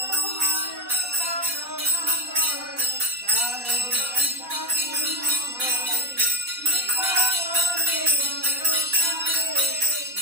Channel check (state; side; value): late; left; 4.1 ms